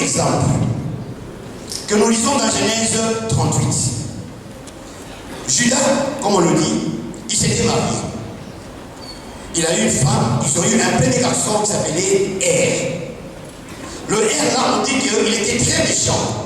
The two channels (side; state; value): both; identical; correlation 1.00